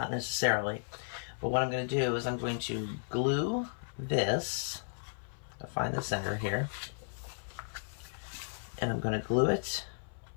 necessarily, but what I'm going to do is I'm going to glue this. I'll find the center here, and I'm going to glue it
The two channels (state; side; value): silent; right; 55 dB below the other